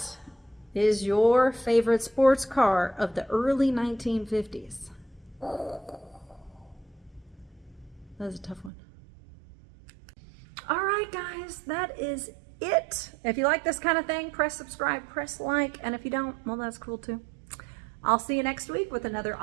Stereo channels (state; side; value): drops out; left; at 8.7 s